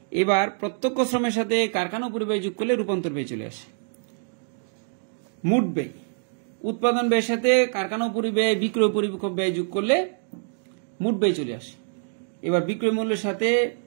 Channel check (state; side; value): silent; left; digital silence